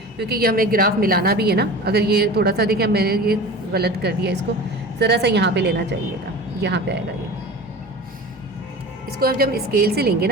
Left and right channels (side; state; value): both; normal; correlation 0.35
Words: क्योंकि ये हमें ग्राफ मिलाना भी है ना। अगर ये थोड़ा सा देखें मैंने ये गलत कर दिया, इसको ज़रा सा यहाँ पे लेना चाहिएगा, यहाँ पे आएगा ये। इसको अब जब स्केल से लेंगे